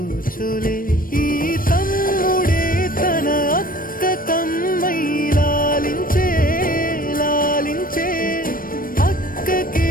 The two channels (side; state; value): right; late; 0.41 ms